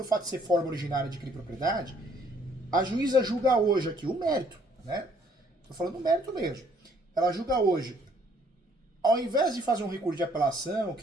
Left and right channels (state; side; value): normal; both; correlation 0.63